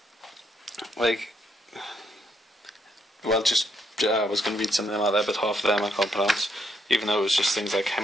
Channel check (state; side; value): normal; both; correlation 0.74